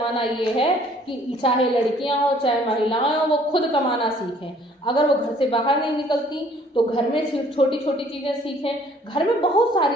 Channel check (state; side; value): normal; both; correlation 0.58